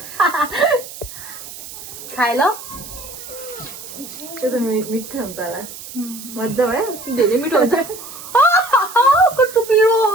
खाए ल त्यो त मिठो हुन्छ होला मजा भयो धेरै मिठो हुन्छ कस्तो पिरो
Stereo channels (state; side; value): noise; right; hiss, 13 dB below the sound